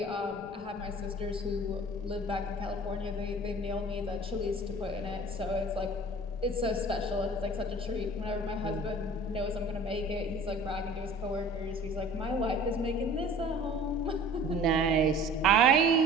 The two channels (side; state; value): left; noise; rumble, 18 dB below the sound